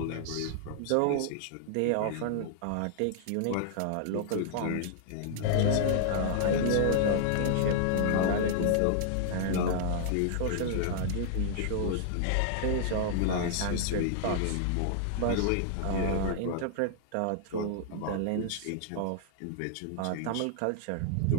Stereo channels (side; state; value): both; different; correlation -0.01